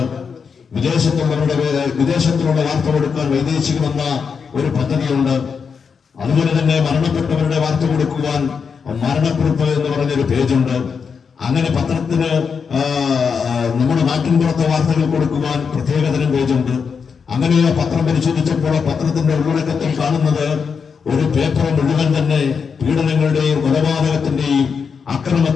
വിദേശത്തുള്ള വാർത്ത കൊടുക്കാൻ വൈദേശികമെന്ന ഒരു പദ്ധതിയുണ്ട്. അതുപോലെ തന്നെ മരണപ്പെട്ടവരുടെ വാർത്ത കൊടുക്കുവാൻ മരണക്കുറിപ്പ് എന്ന് പറഞ്ഞൊരു പേജുണ്ട്. അങ്ങനെ പത്രത്തിന് നമ്മുടെ നാട്ടിൻപുറത്തെ വാർത്തകൾ കൊടുക്കുവാൻ പ്രത്യേകതരം പേജുണ്ട്. അങ്ങനെ ആ പത്രം പരിശോധിച്ചപ്പോൾ പത്രത്തിന്റെ ഉള്ളടക്കത്തിൽ കാണുന്നത് ഒരു പേപ്പർ മുഴുവൻ തന്നെ പീഡനങ്ങളുടെയും കൊലപാതകത്തിന്റെയും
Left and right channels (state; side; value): quieter; right; 6.0 dB